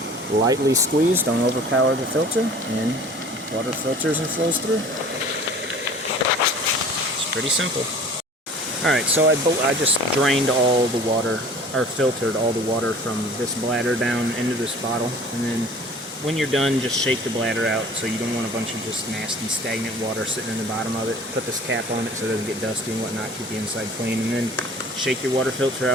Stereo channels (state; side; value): normal; both; correlation 0.46